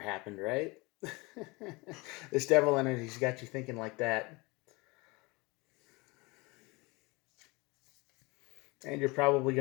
right? This devil energy's got you thinking like that. And you're probably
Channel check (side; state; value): right; quieter; 25.3 dB